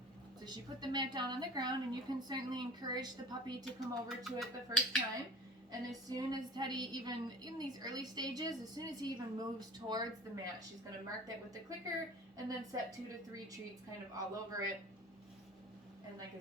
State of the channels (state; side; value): normal; both; correlation 0.41